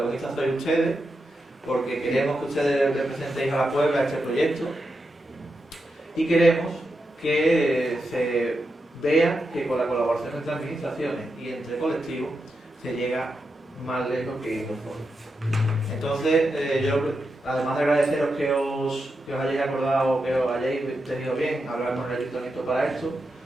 sois ustedes, porque queremos que ustedes representéis a la Puebla este proyecto y queremos que se vea que con la colaboración entre administraciones y entre colectivos se llega más lejos que nosotros. Entonces, yo, además de agradeceros que os hayáis acordado, que os hayáis tenido bien hablar con el ayuntamiento para esto,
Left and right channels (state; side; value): normal; both; correlation 0.87